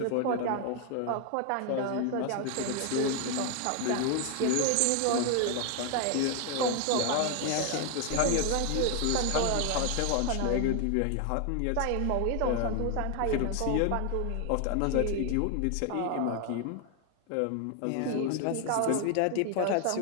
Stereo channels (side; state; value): both; different; correlation 0.01